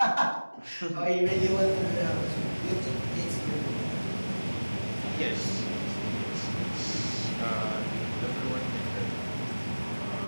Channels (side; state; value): both; inverted; correlation -1.00